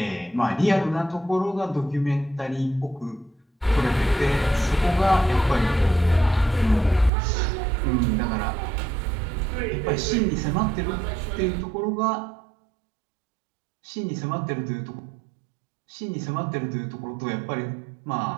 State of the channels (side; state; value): left; drops out; at 7.1 s